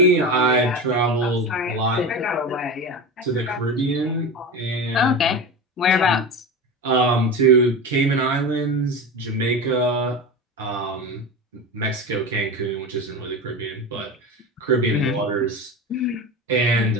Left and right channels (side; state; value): both; normal; correlation 0.25